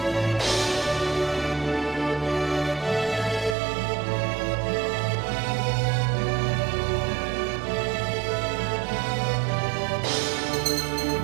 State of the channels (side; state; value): left; drops out; at 3.6 s